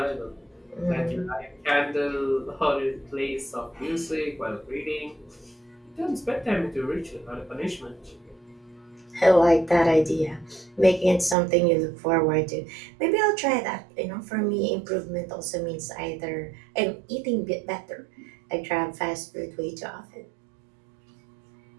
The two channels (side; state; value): left; drops out; at 11.4 s